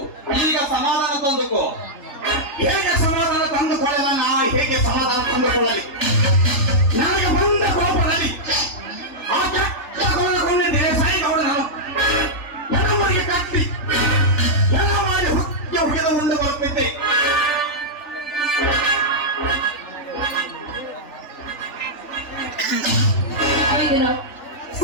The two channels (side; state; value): right; late; 3.4 ms